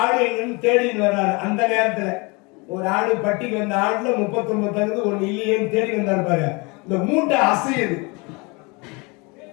ஆடு தேடின்னு வர்றாரு. அந்த நேரத்துல ஒரு ஆடு பட்டிக்கு வந்த ஆடுல 39 ஒண்ணு இல்லையேன்னு தேடி வந்தாரு பாரு. இந்த மூட்டை அசையுது.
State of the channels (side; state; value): right; quieter; 28.5 dB